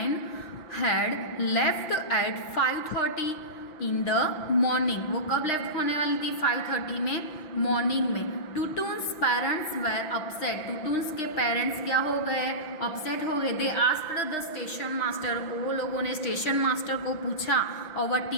had left eight 5:30 in the morning, वो कब लेफ्ट होने वाली थी, 5:30 में मॉर्निंग में। टुटुन्स पेरेंट्स वेर अपसेट, टुटुन्स के पेरेंट्स क्या हो गए, अपसेट हो गए। They asked the station master, वो लोगों ने स्टेशन मास्टर को पूछा, और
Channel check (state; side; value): late; right; 5.9 ms